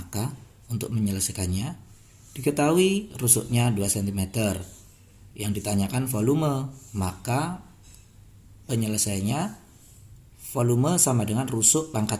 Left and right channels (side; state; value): both; identical; correlation 1.00